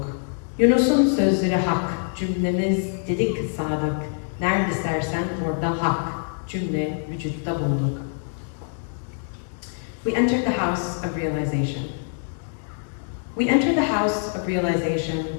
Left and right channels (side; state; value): right; silent; digital silence